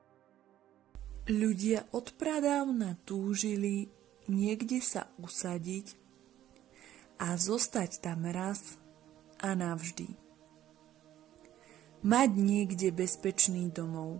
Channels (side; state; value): left; quieter; 12.5 dB